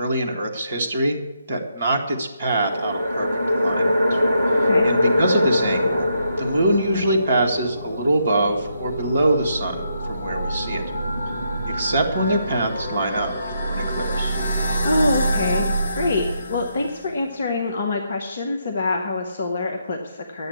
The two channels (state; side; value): inverted; both; correlation -0.78